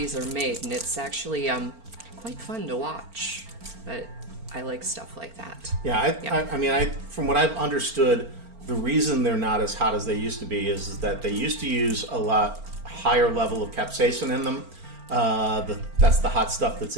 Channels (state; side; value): late; left; 4.4 ms